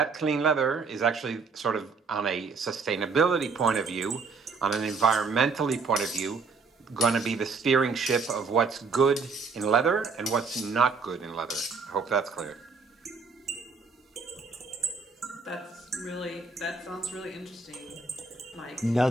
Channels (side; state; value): left; quieter; 4.6 dB